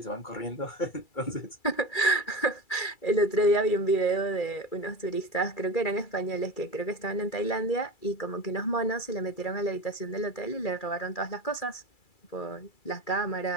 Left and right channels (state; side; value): late; right; 2.3 ms